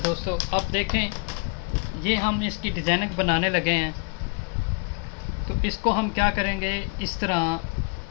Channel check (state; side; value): quieter; right; 31.2 dB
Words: अब देखें, ये हम इसकी डिज़ाइनिंग बनाने लगे हैं। तो इसको हम क्या करेंगे, इस तरह